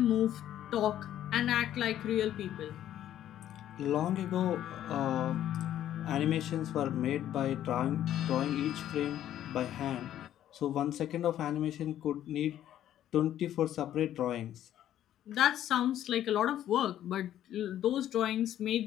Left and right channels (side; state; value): right; quieter; 11.7 dB